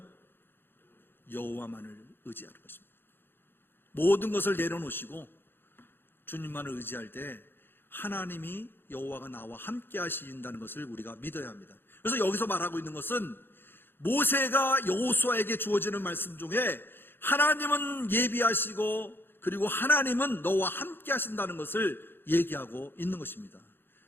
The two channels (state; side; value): late; right; 0.10 ms